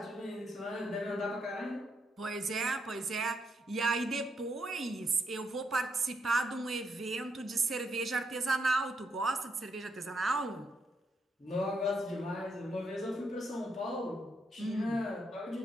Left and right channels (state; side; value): normal; both; correlation 0.78